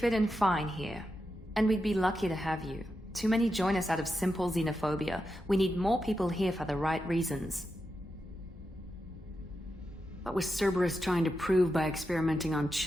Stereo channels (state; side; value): normal; both; correlation 0.88